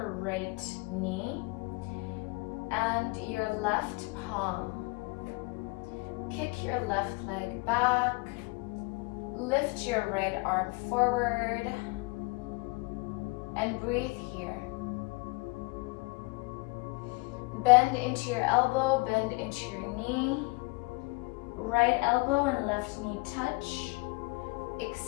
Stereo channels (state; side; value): quieter; right; 27.5 dB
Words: right knee and your left palm. Kick your left leg back. Lift your right arm forward and breathe here. Bend into your elbow, bend into your knee. Right elbow and left knee touch.